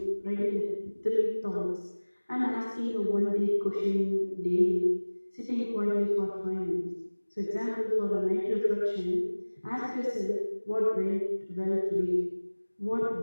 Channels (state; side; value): inverted; both; correlation -1.00